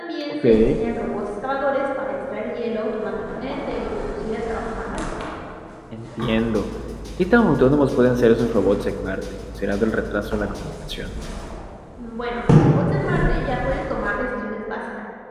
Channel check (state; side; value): identical; both; correlation 1.00